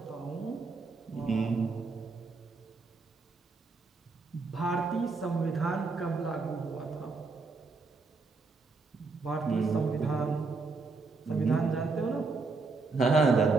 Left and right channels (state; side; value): quieter; left; 4.1 dB